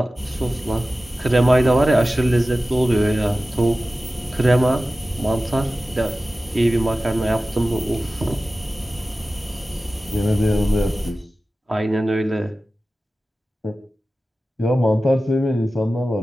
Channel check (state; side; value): normal; both; correlation 0.95